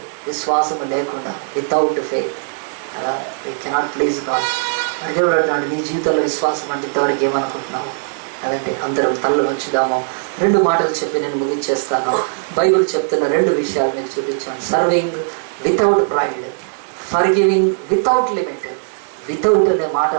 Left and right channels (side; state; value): left; silent; 67 dB below the other